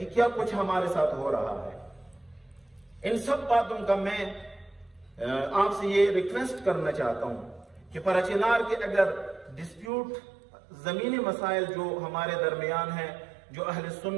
کیا کچھ ہمارے ساتھ ہو رہا ہے. ان سب باتوں کا میں آپ سے یہ ریکویسٹ کرنا چاہتا ہوں کہ پراچینار کے اگر ڈسپیوٹ زمینی مسائل جو ہمارے درمیان ہیں، جو اہل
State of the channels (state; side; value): drops out; left; at 9.9 s